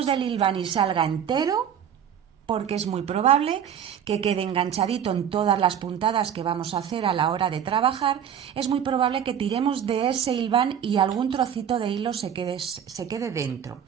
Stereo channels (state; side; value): quieter; left; 8.8 dB